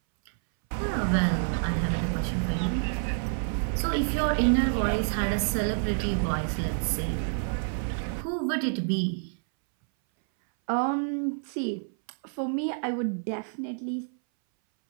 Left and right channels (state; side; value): silent; left; 59 dB below the other